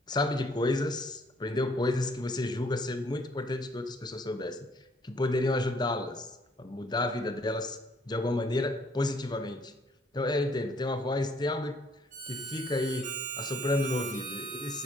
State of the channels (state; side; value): normal; both; correlation 0.64